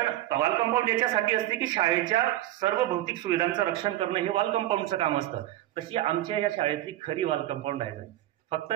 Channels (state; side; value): quieter; left; 14.8 dB